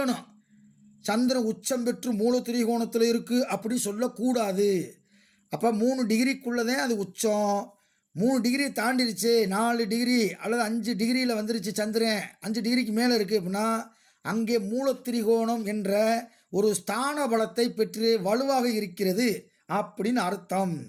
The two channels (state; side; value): identical; both; correlation 1.00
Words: சந்திரன் உச்சம் பெற்று மூலத்திரிகோணத்தில் இருக்குது அப்படி சொல்லக்கூடாது. அப்போ 3 டிகிரிக்குள்ளே தான் அது உச்சம். 3 டிகிரி தாண்டிருச்சு, 4 டிகிரி அல்லது 5 டிகிரியில் வந்துருச்சு சந்திரன், 5 டிகிரிக்கு மேலே இருக்குது அப்படின்னா அங்கே மூலத்திரிகோணம் என்ற ஒரு ஸ்தான பலத்தை பெற்று வலுவாக இருக்கிறது அப்படின்னு அர்த்தம்.